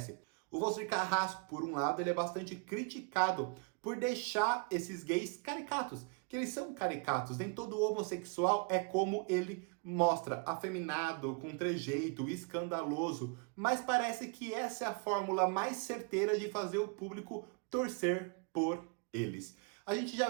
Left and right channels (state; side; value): quieter; left; 35.5 dB